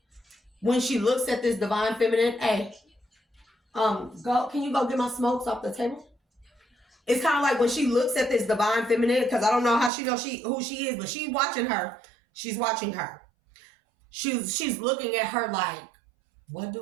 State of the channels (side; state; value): left; drops out; at 9.9 s